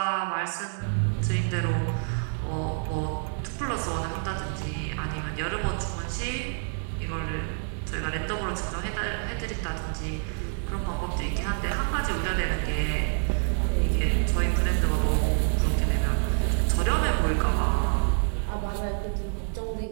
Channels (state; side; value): silent; left; 60 dB below the other